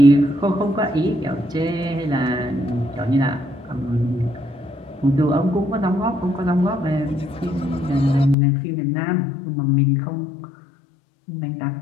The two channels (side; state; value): right; drops out; at 8.3 s